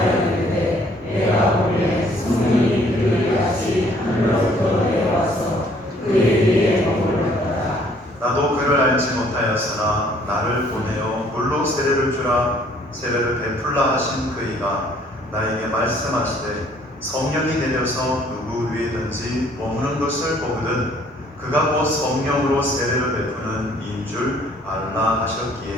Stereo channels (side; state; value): both; normal; correlation 0.61